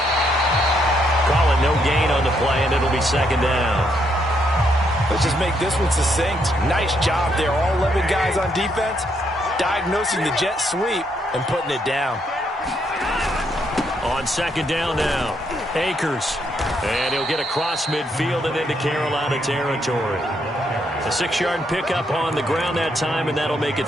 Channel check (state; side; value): normal; both; correlation 0.75